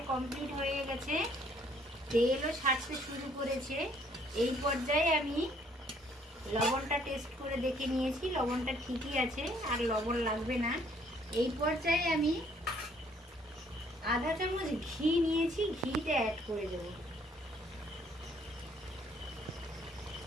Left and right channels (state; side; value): normal; both; correlation 0.63